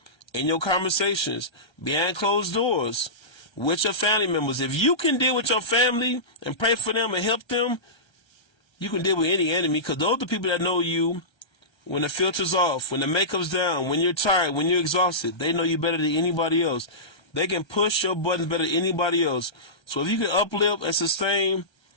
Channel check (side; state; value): right; late; 1.3 ms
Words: in your conversations, behind closed doors, with your family members. If you can deal with your family and pray for them and help them, you can deal with any enemy, because those are the people that know you when the filter's off, when the makeup's down, when you're tired, when you're exhausted, they know you better than anybody else. They can push your buttons better than anybody else. So if you can uplift and sustain